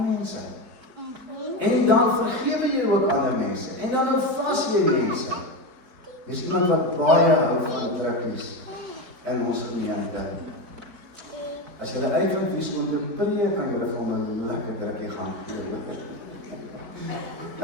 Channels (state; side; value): late; left; 4.4 ms